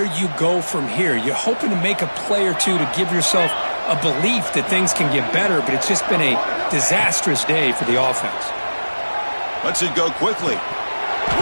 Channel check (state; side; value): inverted; both; correlation -1.00